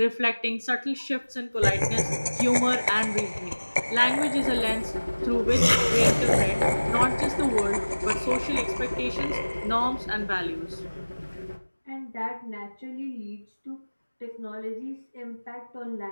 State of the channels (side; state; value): both; inverted; correlation -1.00